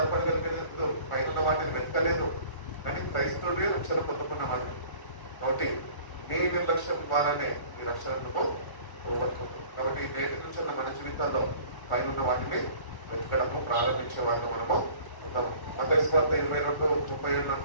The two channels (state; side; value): late; right; 1.0 ms